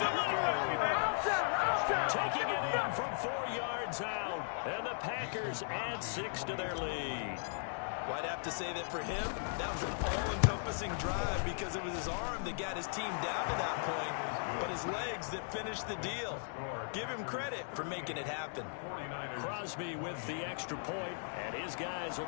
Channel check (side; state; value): right; silent; digital silence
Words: Taking it in from 4 yards out. And the Packers add 6 to their lead. Well, I'd have to say that for him, that was an all-encompassing drive because it was his arm that got his team down to that point, but his legs that finished the deal. Give him credit for making it happen. Crosby with the extra point, and his guys